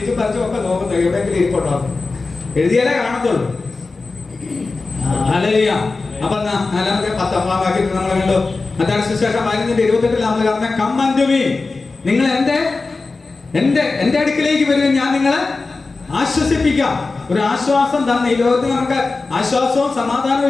പറിച്ചും ഒക്കെ നോക്കുന്നത് എവിടെയെങ്കിലും ഇരിപ്പുണ്ടോ? എഴുതിയാലേ കാണത്തുള്ളൂ. ഹല്ലേലൂയ. അപ്പൊ 4-ാം വാക്യത്തിൽ നമ്മൾ കണ്ടു. മത്തായി സുവിശേഷം 15:28 നമ്മൾ പറഞ്ഞ കം അൻടു മീ, നിങ്ങൾ എന്റെ അടുക്കിലേക്ക് വരികയും ഞാൻ നിങ്ങളെ ആശ്വസിപ്പിക്കാം. ഒരു ആശ്വാസം തന്നെ. ഈ ലോകത്തിൽ നമുക്ക് ആശ്വാസവും സമാധാനവും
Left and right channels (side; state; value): right; quieter; 3.8 dB